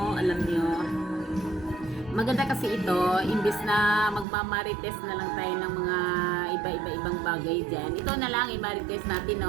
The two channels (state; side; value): drops out; left; at 4.2 s